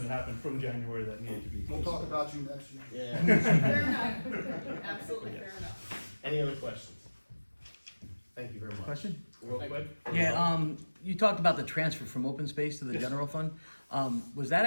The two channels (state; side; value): inverted; both; correlation -1.00